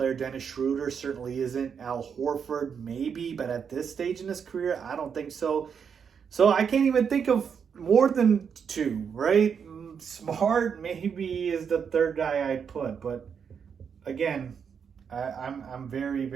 Dennis Schroeder certainly isn't. Al Horford, maybe, but at this stage in his career, I don't think so. So I can't even think of more than two, right? Smart maybe is the third guy I'd put, but again, I'm very,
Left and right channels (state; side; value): quieter; left; 6.9 dB